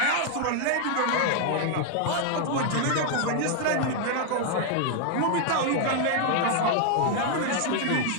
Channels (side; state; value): both; different; correlation 0.00